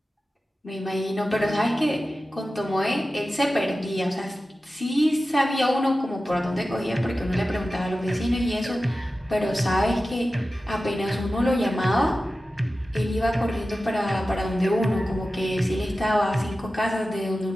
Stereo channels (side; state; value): both; normal; correlation 0.94